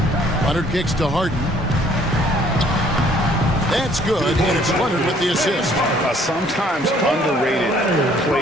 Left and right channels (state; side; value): normal; both; correlation 0.60